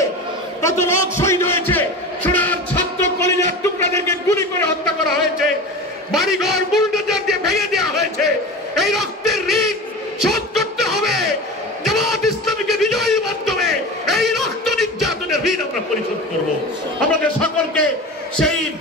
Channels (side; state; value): both; normal; correlation 0.31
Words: কত লোক শহীদ হয়েছে, সোনার ছাত্র কলিজার টুকরাদেরকে গুলি করে হত্যা করা হয়েছে, বাড়িঘর বুলডোজার দিয়ে ভেঙে দেওয়া হয়েছে। এই রক্তের ঋণ শোধ করতে হবে। জামাত ইসলামীকে বিজয়ের মাধ্যমে এই রক্ত নির্যাতনের ঋণ আমরা পরিশোধ করব। আমাদের সকলকে সেই